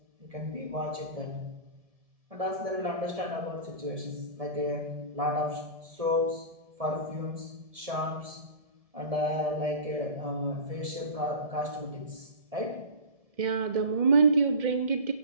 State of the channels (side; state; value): left; late; 1.7 ms